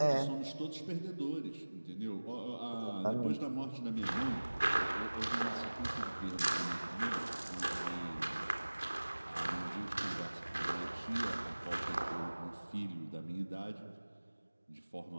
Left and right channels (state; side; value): inverted; both; correlation -1.00